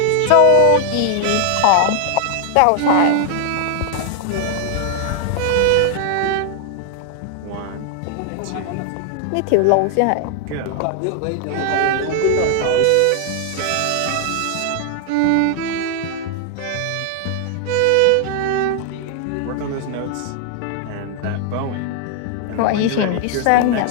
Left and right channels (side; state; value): both; different; correlation 0.00